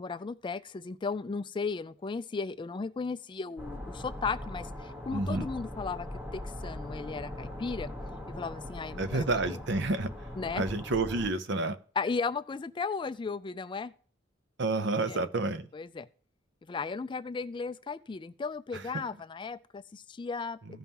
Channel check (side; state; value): both; normal; correlation 0.33